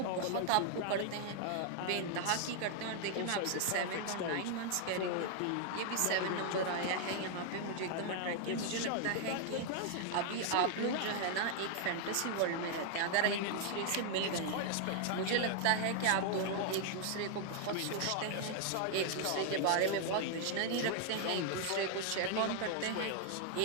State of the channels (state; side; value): different; both; correlation 0.00